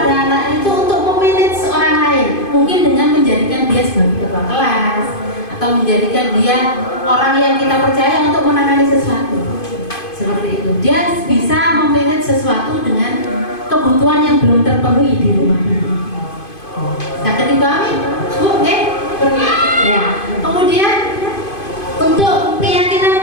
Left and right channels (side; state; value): right; late; 2.5 ms